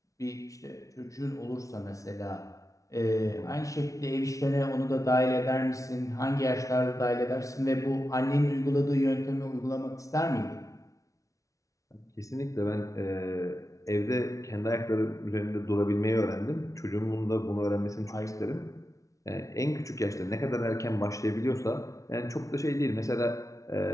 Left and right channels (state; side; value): late; right; 0.16 ms